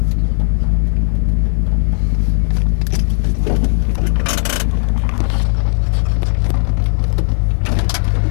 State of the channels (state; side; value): silent; right; digital silence